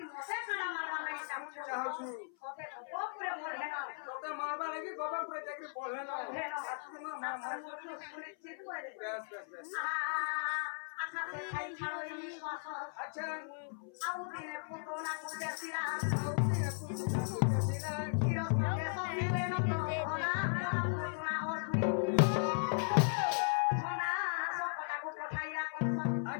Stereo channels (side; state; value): right; silent; 53 dB below the other